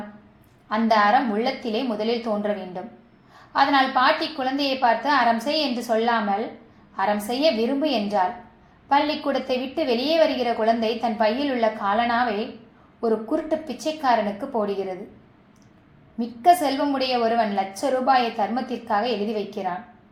அந்த அறம் உள்ளத்திலே முதலில் தோன்ற வேண்டும். அதனால் பாட்டி குழந்தையை பார்த்து அறம் செய் என்று சொல்லாமல் அறம் செய்ய விரும்பு என்றாள். பள்ளிக்கூடத்தை விட்டு வெளியே வருகிற குழந்தை தன் பையில் உள்ள காலனாவை ஒரு குருட்டு பிச்சைக்காரனுக்கு போடுகிறது. மிக்க செல்வமுடைய ஒருவன் ₹1,00,000 தர்மத்திற்காக எழுதி வைக்கிறான்.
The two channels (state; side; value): identical; both; correlation 1.00